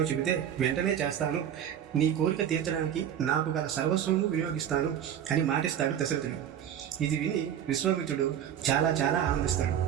చెబితే వెంటనే చేస్తాను. నీ కోరిక తీర్చడానికి నాకు గల సర్వస్వము వినియోగిస్తాను అని మాటిస్తాడు దశరథుడు. ఇది విని విశ్వామిత్రుడు చాలా చాలా ఆనందిస్తాడు.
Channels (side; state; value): left; quieter; 9.6 dB